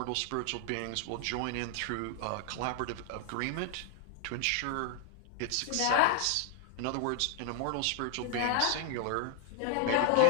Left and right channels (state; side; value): different; both; correlation 0.00